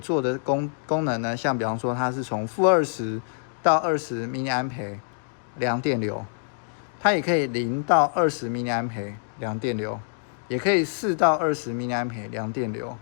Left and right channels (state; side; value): silent; right; digital silence